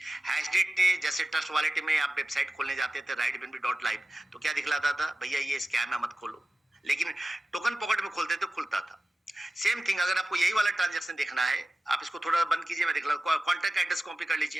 हैशडेट जैसे ट्रस्ट वॉलेट में आप वेबसाइट खोलने जाते थे rightbnb.live, तो क्या दिखलाता था, भैया ये स्कैम है मत खोलो, लेकिन टोकन पॉकेट में खोलते तो खुलता था। सेम थिंग, अगर आपको यही वाला ट्रांजैक्शन देखना है, आप इसको थोड़ा बंद कीजिए, मैं दिखला, कॉन्टैक्ट एड्रेस कॉपी कर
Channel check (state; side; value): normal; both; correlation 0.95